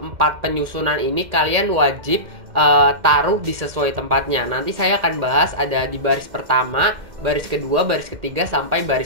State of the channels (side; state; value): left; late; 2.1 ms